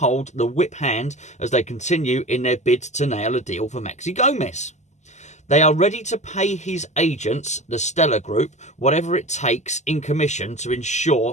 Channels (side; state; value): right; late; 0.34 ms